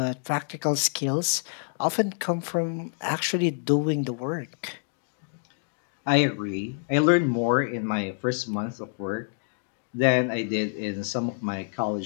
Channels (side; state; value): right; silent; digital silence